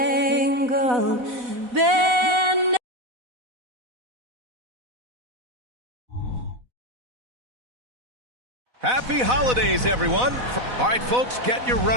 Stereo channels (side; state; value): left; late; 4.1 ms